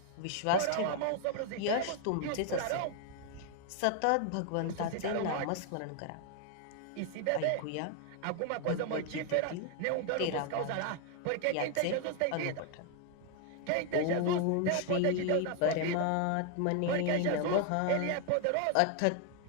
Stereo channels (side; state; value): both; different; correlation 0.00